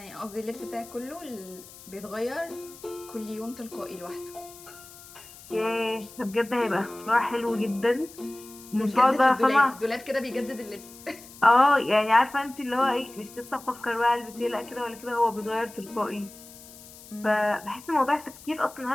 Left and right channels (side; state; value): left; noise; hiss, 19 dB below the sound